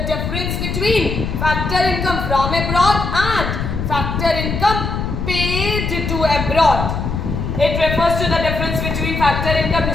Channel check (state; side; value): noise; left; rumble, 3 dB below the sound